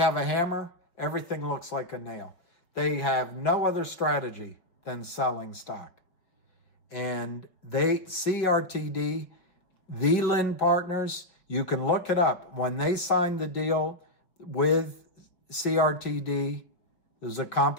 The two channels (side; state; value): right; late; 5.5 ms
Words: a hammer, everything looks like a nail. They have no other strategy than selling stock. And CRTD, the Lynn Partners, you can look it up. When they signed the deal with CRTD, it was a